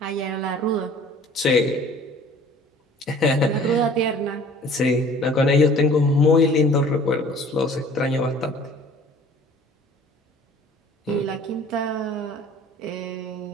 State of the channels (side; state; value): both; normal; correlation 0.50